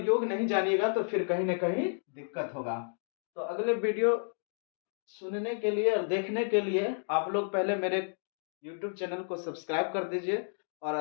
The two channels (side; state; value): right; silent; digital silence